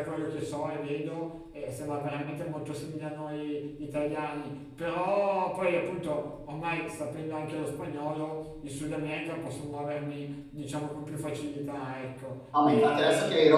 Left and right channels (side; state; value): both; identical; correlation 1.00